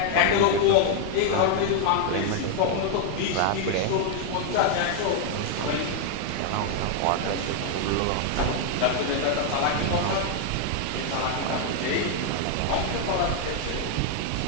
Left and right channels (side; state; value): both; different; correlation 0.00